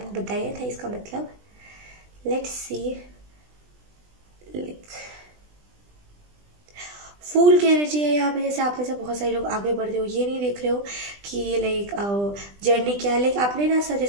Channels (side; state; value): left; late; 20 ms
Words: बताया था इसका मतलब। लेट्स सी, फूल की एनर्जी है यहाँ पे। जैसे आप में से बहुत सारे लोग आगे बढ़ रहे हो, ये नहीं देख रहे हो कि लाइक जर्नी क्या है, लाइक आपने ना सर